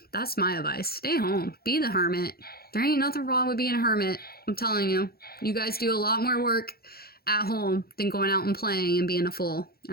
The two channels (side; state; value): right; late; 0.44 ms